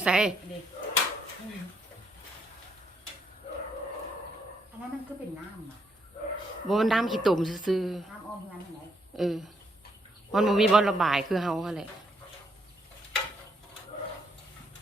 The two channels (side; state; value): both; normal; correlation 0.74